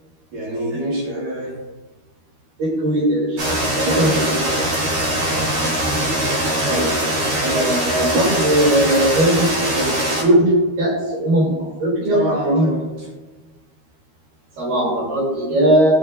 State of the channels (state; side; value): late; left; 13 ms